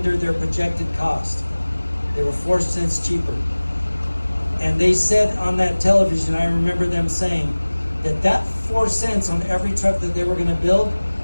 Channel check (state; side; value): inverted; both; correlation -1.00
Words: their projected cost. They were 4 cents cheaper. And they said on that television, I remember them saying that 4 cents on every truck that they were going to build